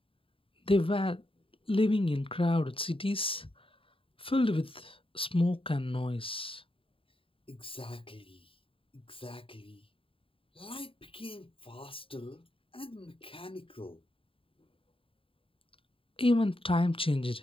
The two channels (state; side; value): late; right; 0.26 ms